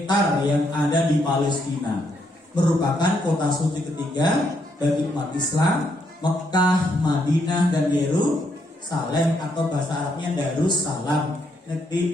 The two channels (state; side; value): normal; both; correlation 0.75